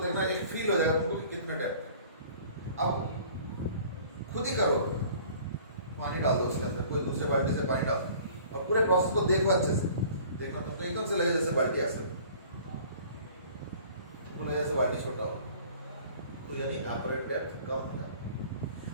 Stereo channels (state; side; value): inverted; both; correlation -0.50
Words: देखना, एक फील हो जाएगा तुमको कि कितना डेप्थ। अब खुद ही करो, पानी डाल दो उसके अंदर, कोई दूसरे बाल्टी से पानी डाल दो और पूरे प्रोसेस को देखो अच्छे से। देखना तुमको एकदम से लगे जैसे बाल्टी ऐसे, तुमको लगे जैसे बाल्टी छोटा हो, तो यानी अपरेंट डेप्थ कम हो जाता है।